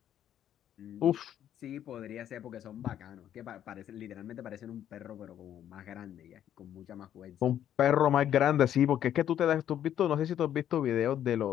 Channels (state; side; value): quieter; right; 10.6 dB